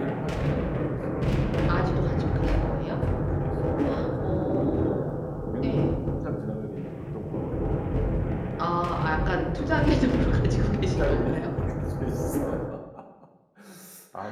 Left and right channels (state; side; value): identical; both; correlation 1.00